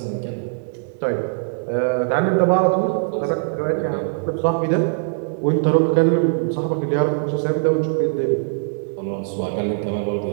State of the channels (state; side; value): silent; left; digital silence